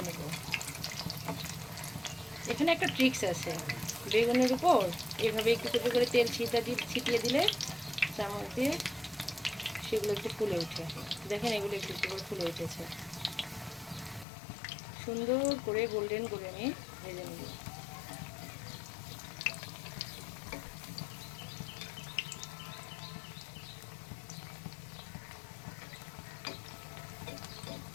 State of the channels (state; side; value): drops out; right; at 14.2 s